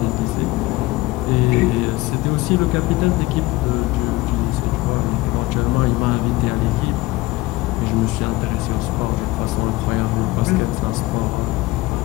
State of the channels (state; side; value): quieter; right; 19.9 dB